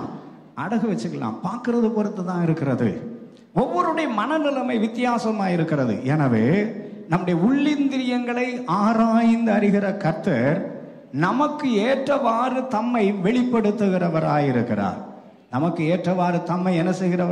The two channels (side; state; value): both; identical; correlation 1.00